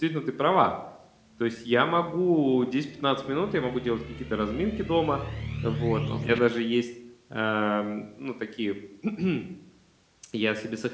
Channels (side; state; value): both; identical; correlation 1.00